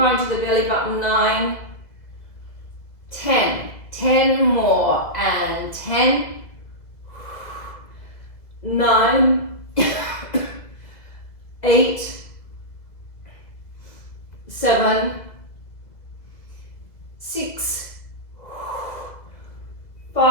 to the belly button. 9. 10. 10 more. And 10. 9. 8. 7. 6.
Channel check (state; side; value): late; right; 2.0 ms